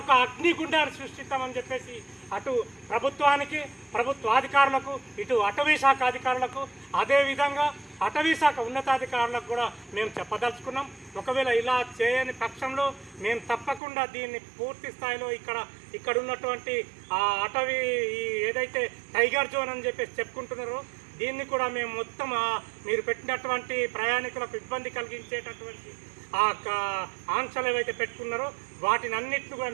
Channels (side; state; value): left; drops out; at 13.8 s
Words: అగ్నిగుండాన్ని సృష్టిస్తామని చెప్పేసి అటు ప్రభుత్వానికి, ప్రభుత్వాధికారులకు, ఇటు అటవీ శాఖ అధికారులకు, అదేవిధంగా అటవీ శాఖ ఉన్నతాధికారులకు కూడా మేము చెప్పదలుచుకున్నాం. ఒకవేళ ఇలా చేయని పక్షంలో మేము తప్పకుండా దీన్ని పూర్తి స్థాయిలో ఇక్కడ ఉన్నటువంటి ఆ అటవీ ఏదైతే టైగర్ జోన్ అని చెప్పేసి చెప్పుకుంటున్నారో దీన్ని కూడా మేము మొత్తం మీరు పెట్టినటువంటి ప్రయాణికులకు ఇబ్బంది కలిగించేటటువంటి ఆంక్షలు ఏవైతే పెట్టుకున్నారో వాటిని అన్నింటిని కూడా